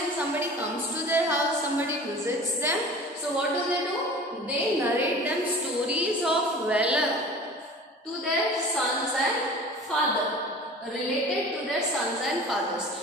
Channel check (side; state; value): both; normal; correlation 0.41